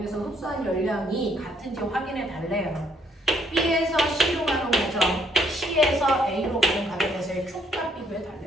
흡수한 열량이 같은지 확인해 달래요. B에서 C로 가는 과정, C에서 A로 가는 과정에서의 Q값 비교해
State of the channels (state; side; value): normal; both; correlation 0.68